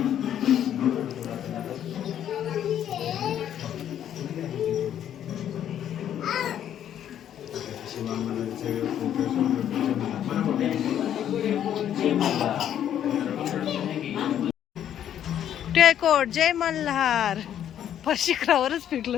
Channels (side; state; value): right; quieter; 10.2 dB